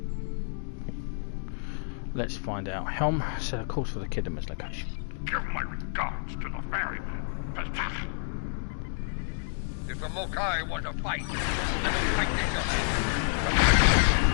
Let's find out. Helm, set a course for the Khitomer's location. Give my regards to the ferryman. If the Mokai want to fight, let them fight themselves.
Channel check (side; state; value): right; silent; digital silence